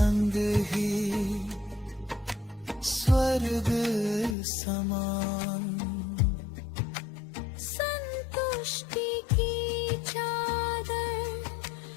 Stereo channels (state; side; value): drops out; right; at 4.4 s